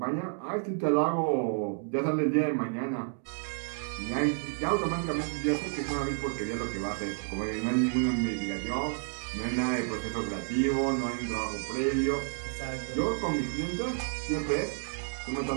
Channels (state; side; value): silent; left; 57 dB below the other